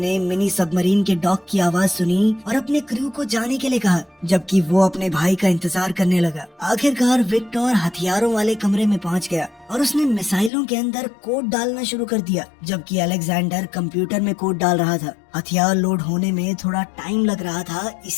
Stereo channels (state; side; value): drops out; right; at 10.5 s